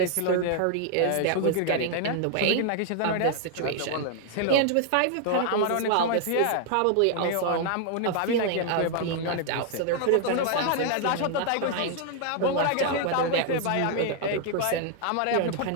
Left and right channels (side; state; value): both; different; correlation 0.00